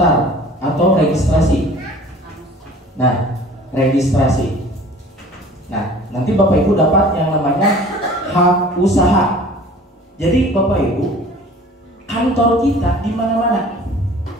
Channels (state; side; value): normal; both; correlation 0.46